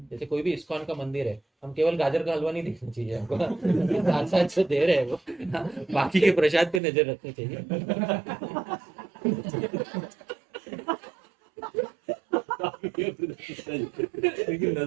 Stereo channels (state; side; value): drops out; left; at 6.8 s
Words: जैसे कोई भी इस्कॉन का मंदिर है, हम केवल गाजर का हलवा नहीं देखना चाहिए हमको, साथ साथ जो दे रहे हैं वो, हाँ, बाकी के प्रसाद पे नजर रखनी चाहिए। लेकिन